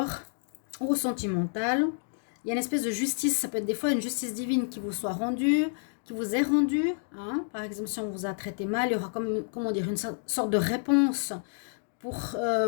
au sentimental. Il y a une espèce de justice, ça peut être des fois une justice divine qui vous soit rendue, qui vous est rendue. Par exemple, si on vous a traité mal, il y aura comment dire, une sorte de réponse pour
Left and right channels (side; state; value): right; silent; digital silence